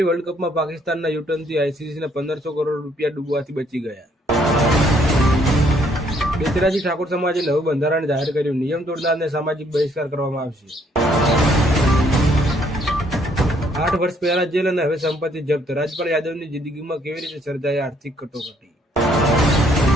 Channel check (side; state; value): both; normal; correlation 0.67